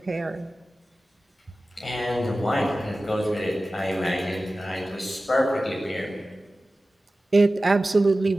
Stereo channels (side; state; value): both; normal; correlation 0.96